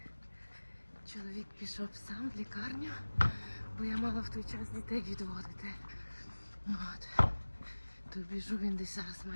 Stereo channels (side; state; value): both; inverted; correlation -1.00